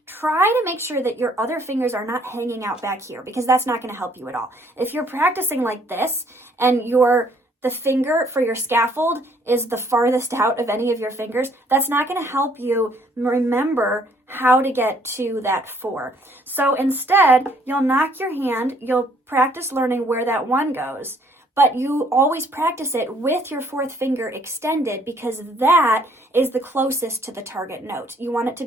try to make sure that your other fingers are not hanging out back here, because that's not going to help you at all. If you're practicing like this and the finger for your scaffold is the farthest out of any of your fingers, that's not going to help you remember how to get to that 4. So instead, you'll knock your hand, you'll practice learning where that 1 goes, but you always practice it with your 4th finger extended, because that is the closest to the target note. You want it to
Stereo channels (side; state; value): both; normal; correlation 0.63